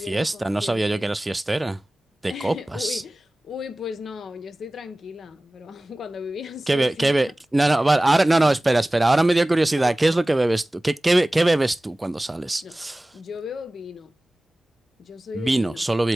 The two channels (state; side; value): normal; both; correlation 0.98